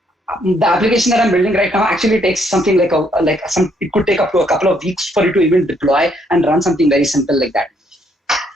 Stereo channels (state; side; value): normal; both; correlation 0.70